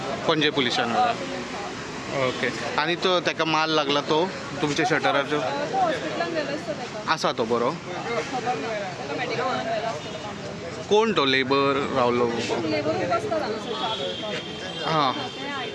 पणजे पुलिसान ओके. आनी तो ताका मार लागला तो तुमच्या शटराचो? तो हॉस्पिटलान गेलो आसता तेका. आसा तो बरो? खबर ना तेका मेडिकलान व्हेलो आसतलो काम करपाक. कोण तो लेबर रावलो? लेबरूच आसता हांगासर च्या पिवपाक. हां तें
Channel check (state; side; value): identical; both; correlation 1.00